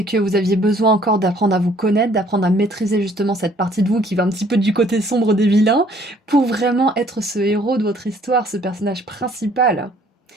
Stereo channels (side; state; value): both; normal; correlation 0.60